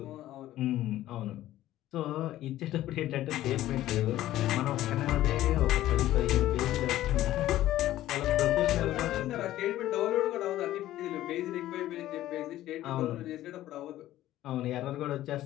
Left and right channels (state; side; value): quieter; right; 14.2 dB